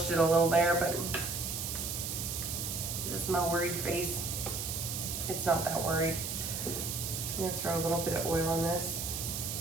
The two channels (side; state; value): right; noise; hiss, 4 dB below the sound